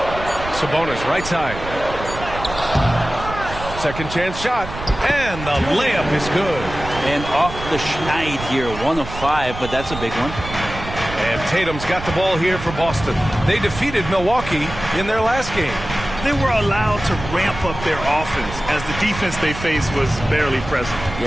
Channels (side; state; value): right; noise; rumble, 10 dB below the sound